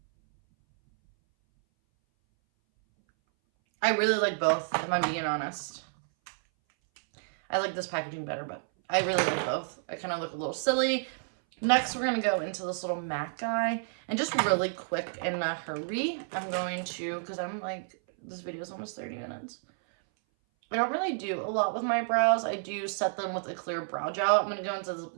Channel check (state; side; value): silent; left; 58 dB below the other